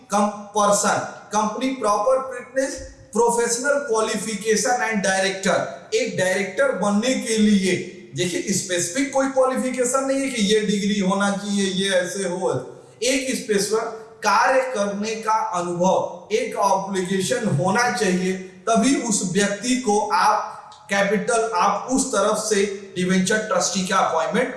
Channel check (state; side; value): identical; both; correlation 1.00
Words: person, company proper fitness, professional qualification and director, एक डायरेक्टर बनने के लिए देखिए स्पेसिफिक कोई क्वालिफिकेशन नहीं है कि ये डिग्री होना चाहिए, ये ऐसे हो, एक स्पेसिफिक कार्य करने का अनुभव, एक ऑब्लिगेशन होना चाहिए, तभी उस व्यक्ति को आप कैपिटल, आप उस तरफ से डिवेंचर ट्रस्टी का अपॉइंटमेंट